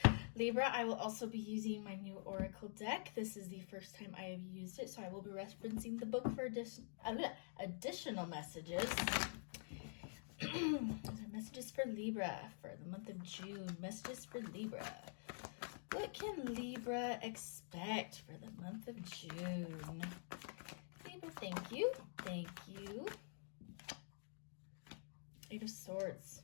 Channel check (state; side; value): silent; right; digital silence